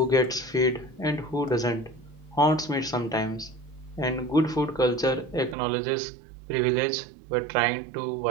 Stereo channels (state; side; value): drops out; left; at 5.6 s